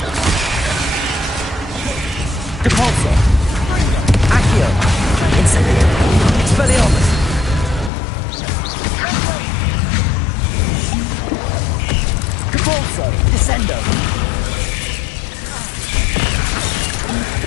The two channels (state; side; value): drops out; right; at 7.9 s